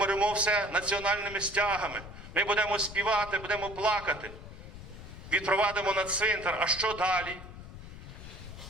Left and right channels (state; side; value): noise; left; rumble, 13 dB below the sound